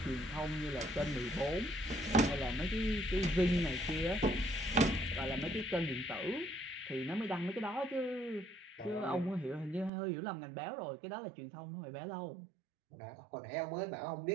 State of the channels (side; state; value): left; drops out; at 9.9 s